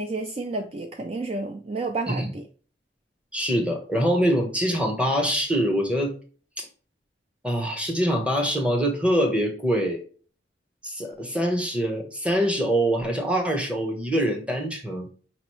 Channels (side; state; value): both; normal; correlation 0.66